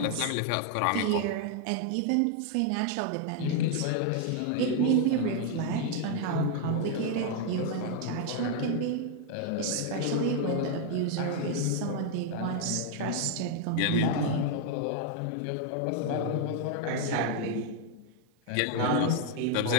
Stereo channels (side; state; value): both; different; correlation 0.00